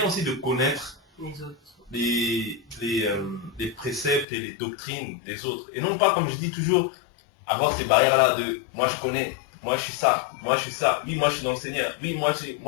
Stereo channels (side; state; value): right; drops out; at 4.2 s